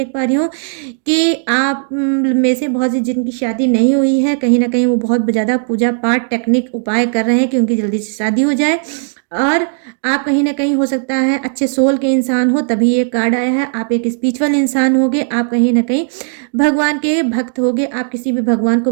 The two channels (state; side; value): silent; left; digital silence